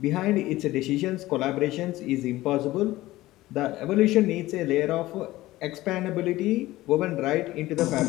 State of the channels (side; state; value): right; quieter; 17.2 dB